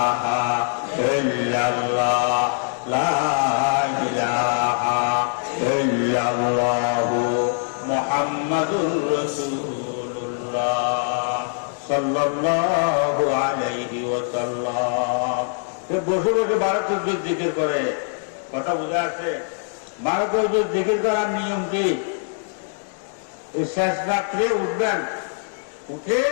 ইল্লাল্লাহ, লা ইলাহা ইল্লাল্লাহ, মুহাম্মাদুর রাসূলুল্লাহ সাল্লাল্লাহু আলাইহি ওয়াসাল্লাম। বসে বসে 12 তসবিহ জিকির করে। কথা বুঝা আছে? 12 তসবিহ জিকির করার নিয়ম কি? শেষ রাত্রে উঠবেন, উঠে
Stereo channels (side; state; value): right; silent; 63 dB below the other